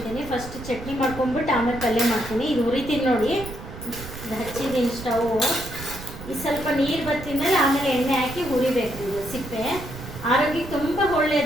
ಫಸ್ಟ್ ಚಟ್ನಿ ಮಾಡ್ಕೊಂಡ್ಬಿಟ್ಟು ಆಮೇಲೆ ಪಲ್ಯ ಮಾಡ್ತೀನಿ. ಇದು ಹುರಿತೀನಿ ನೋಡಿ, ಇದು ಹಚ್ಚಿದ್ದೀನಿ ಸ್ಟವ್. ಇದು ಸ್ವಲ್ಪ ನೀರು ಬತ್ತಿದ ಮೇಲೆ ಆಮೇಲೆ ಎಣ್ಣೆ ಹಾಕಿ ಹುರಿಬೇಕು. ಇದು ಸಿಪ್ಪೆ ಆರೋಗ್ಯಕ್ಕೆ ತುಂಬ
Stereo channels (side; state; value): right; noise; rumble, 12 dB below the sound